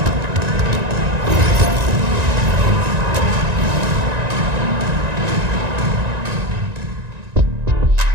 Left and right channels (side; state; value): left; late; 1.9 ms